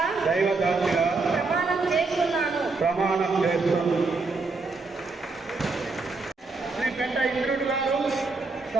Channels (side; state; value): left; quieter; 3.9 dB